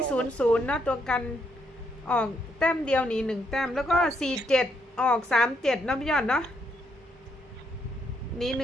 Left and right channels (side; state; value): both; normal; correlation 0.75